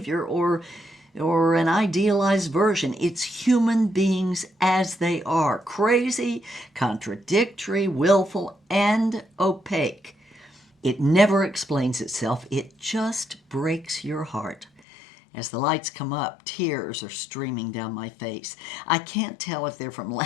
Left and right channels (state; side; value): drops out; right; at 14.8 s